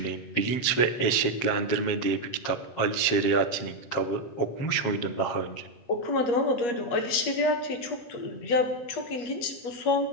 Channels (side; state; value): right; late; 7.5 ms